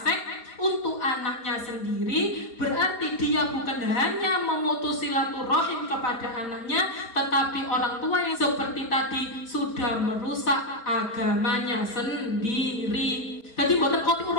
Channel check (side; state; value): right; late; 4.3 ms